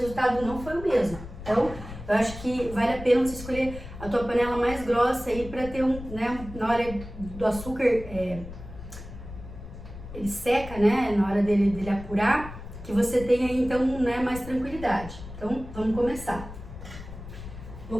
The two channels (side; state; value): left; noise; rumble, 13 dB below the sound